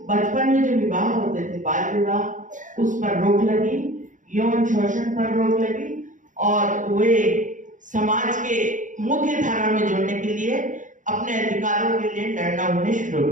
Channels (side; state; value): left; late; 0.37 ms